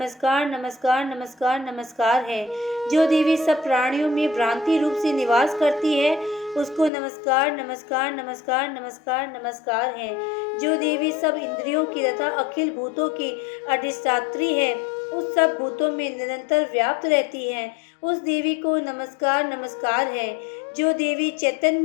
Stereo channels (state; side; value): drops out; right; at 6.9 s